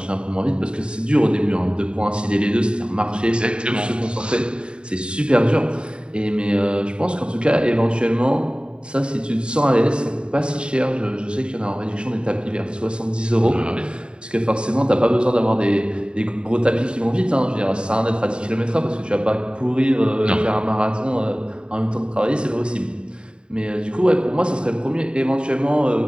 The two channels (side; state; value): left; late; 0.051 ms